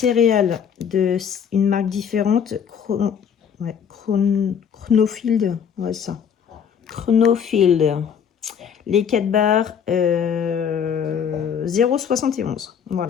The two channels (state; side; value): quieter; right; 7.6 dB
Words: une marque différente. Chronofield. Ouais, ça. Chronofield. Les 4 barres, 0,71 €.